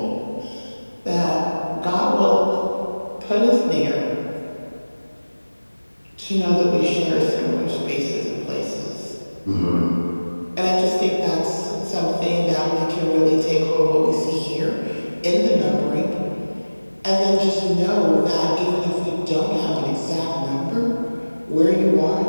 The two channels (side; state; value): both; inverted; correlation -1.00